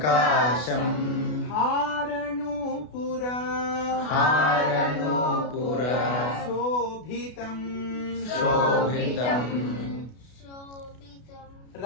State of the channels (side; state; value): right; late; 32 ms